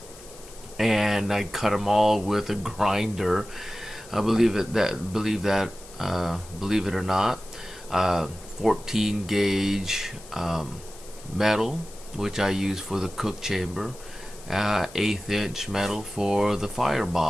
and I cut them all with a grinder. Believe it or not, 14 gauge metal, which I use for the cook chamber, 1/8 inch metal for the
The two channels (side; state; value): left; noise; hiss, 20 dB below the sound